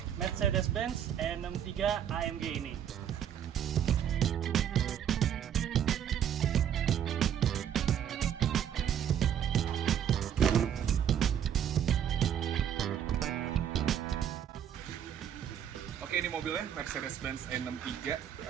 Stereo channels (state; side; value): quieter; left; 9.3 dB